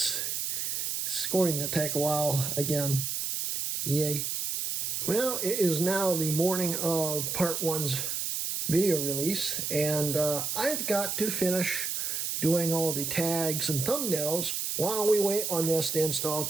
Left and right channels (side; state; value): right; noise; hiss, 2 dB below the sound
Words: going to take a while again. Yay. Well, it is now the morning of Part 1's video release, and I've got to finish doing all the tags and thumbnails while we wait on this to install